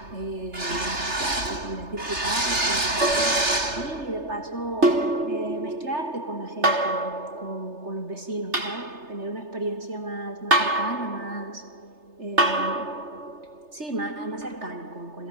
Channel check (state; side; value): late; left; 3.3 ms